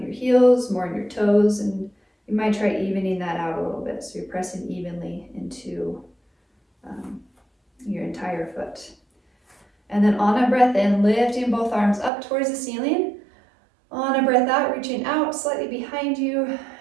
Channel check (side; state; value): left; drops out; at 12.1 s